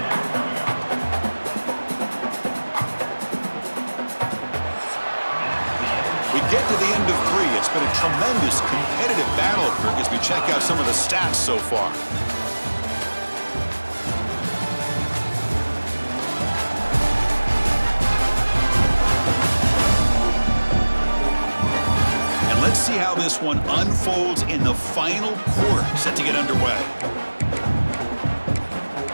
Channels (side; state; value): both; inverted; correlation -1.00